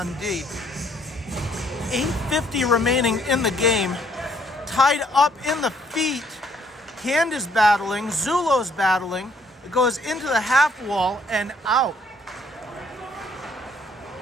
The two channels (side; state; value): both; normal; correlation 0.65